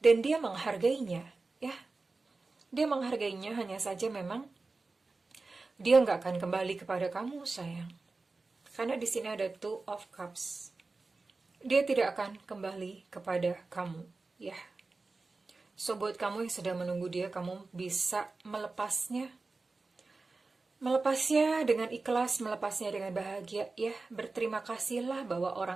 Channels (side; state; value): left; quieter; 3.7 dB